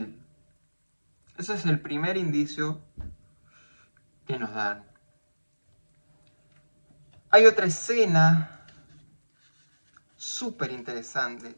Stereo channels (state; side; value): inverted; both; correlation -1.00